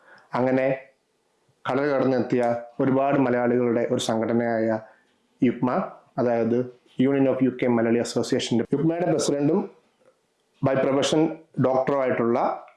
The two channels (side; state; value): both; identical; correlation 1.00